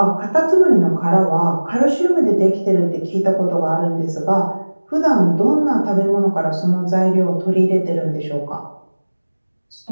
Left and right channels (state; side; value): inverted; both; correlation -1.00